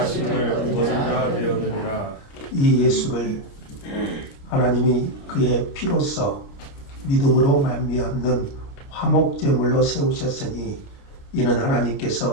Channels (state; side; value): late; right; 29 ms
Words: 얻으리라 되었느니라. 이 예수를 하나님이 그의 피로써 믿음으로 말미암는 화목제물로 세우셨으니 이는